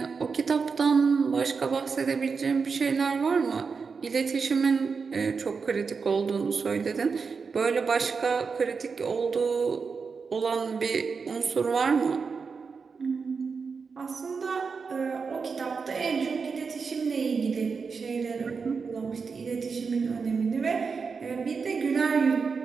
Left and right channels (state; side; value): quieter; left; 5.2 dB